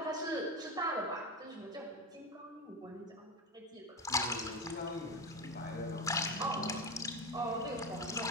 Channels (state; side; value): normal; both; correlation 0.19